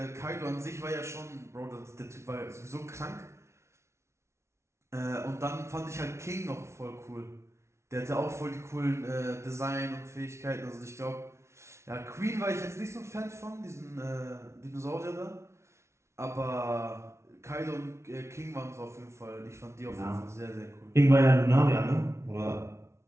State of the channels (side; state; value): left; late; 0.13 ms